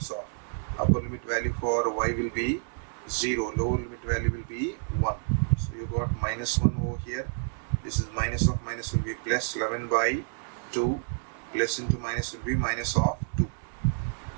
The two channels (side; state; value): left; silent; 59 dB below the other